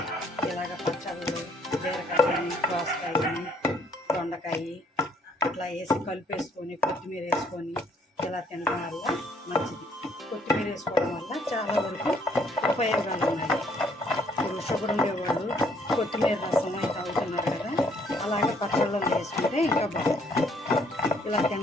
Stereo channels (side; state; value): both; normal; correlation 0.65